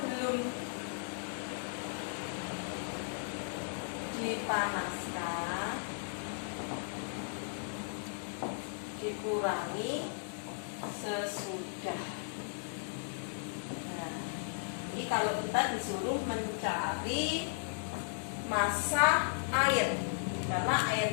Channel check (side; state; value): right; silent; 54 dB below the other